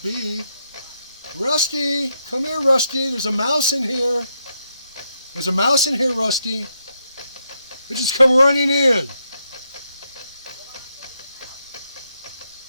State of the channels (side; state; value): both; inverted; correlation -0.80